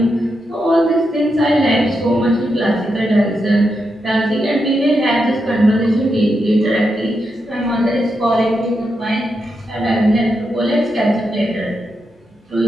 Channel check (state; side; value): normal; both; correlation 0.85